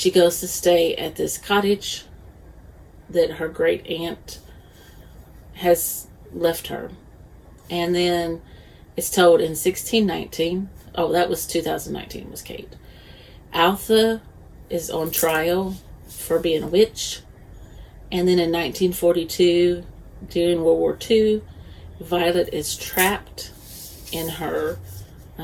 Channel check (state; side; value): identical; both; correlation 1.00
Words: goes to stay at this cottage that her great aunt has left her. And then it's told in 1619. Oh, that was 2019 was Kate. Altha is on trial for being a witch. And then in 1942, during World War II, Violet is trapped in her